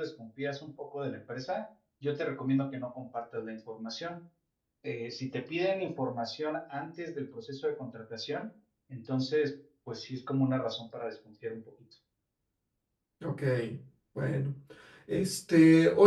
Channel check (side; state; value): both; identical; correlation 1.00